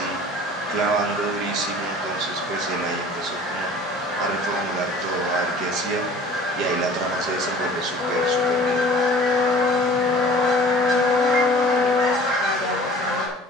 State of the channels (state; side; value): normal; both; correlation 0.47